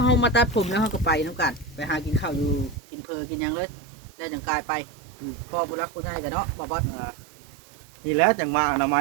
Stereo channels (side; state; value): left; drops out; at 2.8 s